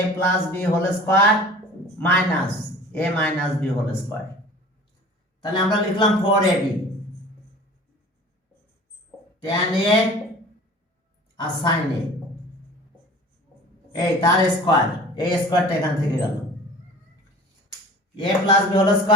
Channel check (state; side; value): normal; both; correlation 0.43